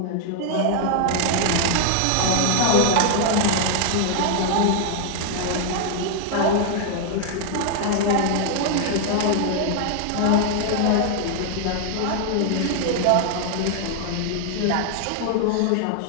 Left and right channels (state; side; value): different; both; correlation 0.00